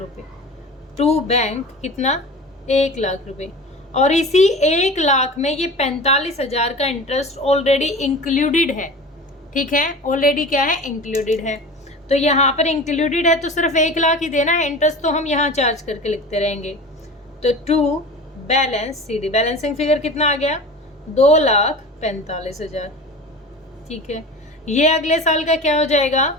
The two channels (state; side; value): normal; both; correlation 0.35